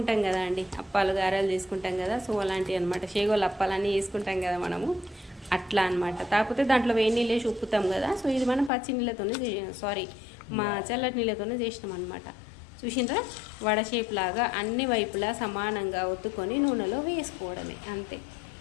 కదా అండి, అప్పాలు గారెలు చేసుకుంటాం కదా, సో అలాంటివి అనమాట. షేగోలు అప్పాలన్నీ చేసుకుంటాం కదా మనము, అట్లా అనమాట. కాకపోతే దాంట్లో వేడి నీళ్ళు వేసి ఉప్పుతాం కదా. సో ఇది మనం పచ్చి నీళ్ళతోనే మా చల్లటి నీళ్ళతోనే చేసినాం అనమాట. చూసిండ్రా, వడ షేప్ లాగా అన్ని వైపులా సమానంగా ఒత్తుకొని నూనెలో వేసుకోవడమే అంతే.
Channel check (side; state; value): right; drops out; at 8.7 s